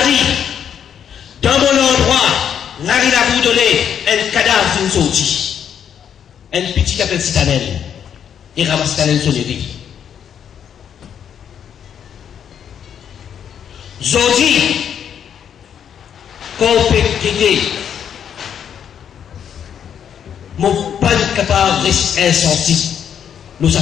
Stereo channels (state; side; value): quieter; right; 8.5 dB